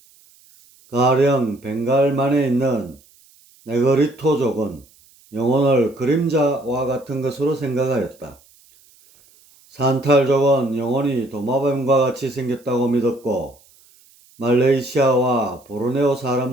가령 벵갈만에 있는 네그리토족은 영혼을 그림자와 같은 것으로 생각하였다. 산탈족은 영혼이 도마뱀과 같이 생겼다고 믿었고, 말레이시아와 보르네오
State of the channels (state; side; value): noise; right; hiss, 29 dB below the sound